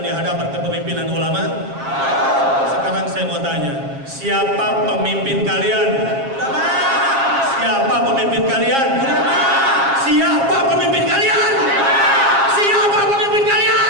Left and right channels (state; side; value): late; left; 7.4 ms